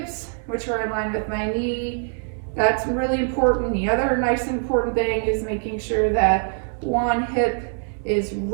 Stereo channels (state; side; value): silent; left; 60 dB below the other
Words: which are in line with my knee. That's really important. The other nice and important thing is making sure that one hip is